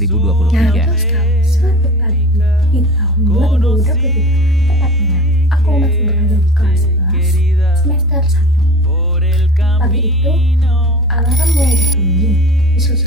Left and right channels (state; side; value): normal; both; correlation 0.37